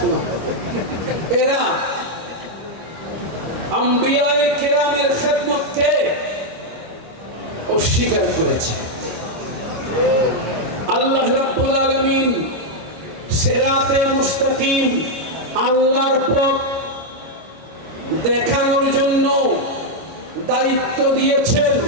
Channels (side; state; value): left; late; 25 ms